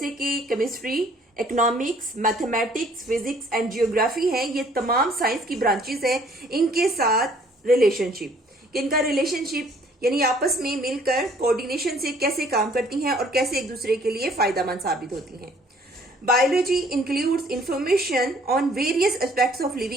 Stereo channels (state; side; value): normal; both; correlation 0.59